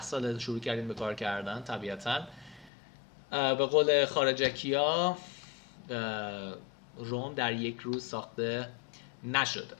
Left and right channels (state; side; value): drops out; right; at 2.7 s